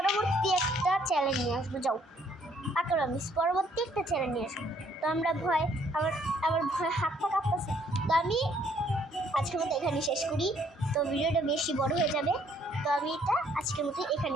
একটা চ্যালেঞ্জ নিয়ে আসবো। যাও আঁকড়, আমি পরবর্তী একটা চ্যালেঞ্জ নিয়ে আসবো। তো আমরা ভয় আমার ভয় হাতটা কাঁপতেছে। তো আমি আজকের মতো এখানে শেষ করি। তো ভিডিওটা বেশি বড় হয়ে যাবে, তো আমি এটা আজকের মতো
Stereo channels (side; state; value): both; normal; correlation 0.65